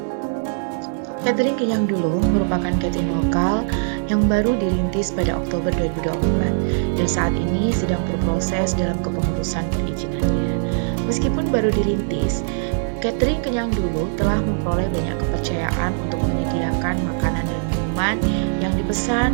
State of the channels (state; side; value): silent; left; 65 dB below the other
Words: Catering kenyang dulu merupakan catering lokal yang baru dirintis pada Oktober 2024 dan saat ini sedang berproses dalam kepengurusan perizinannya. Meskipun baru dirintis, Catering Kenyang Dulu telah memperoleh banyak kepercayaan untuk menyediakan makanan dan minuman yang